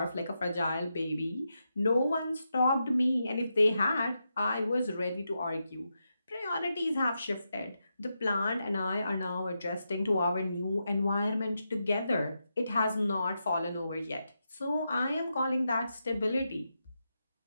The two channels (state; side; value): inverted; both; correlation -0.86